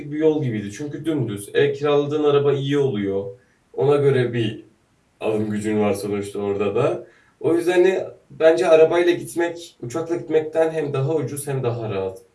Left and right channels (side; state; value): both; identical; correlation 1.00